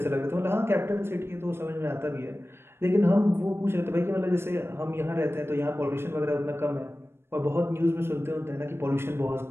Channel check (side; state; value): left; late; 0.12 ms